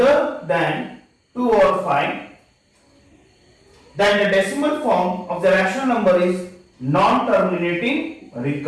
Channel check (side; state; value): both; identical; correlation 1.00